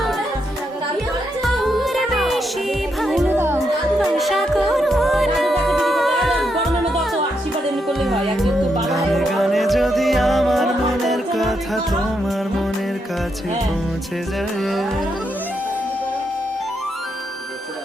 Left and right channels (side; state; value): both; normal; correlation 0.81